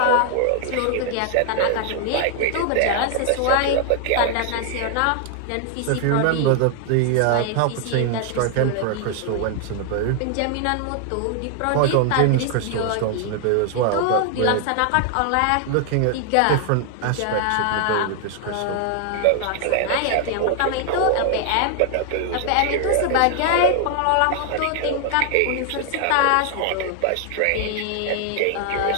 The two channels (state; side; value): different; both; correlation 0.00